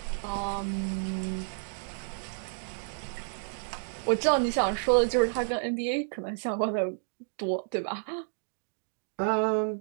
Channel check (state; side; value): silent; left; digital silence